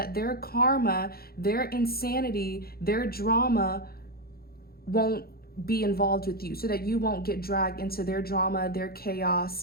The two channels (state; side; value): late; right; 0.44 ms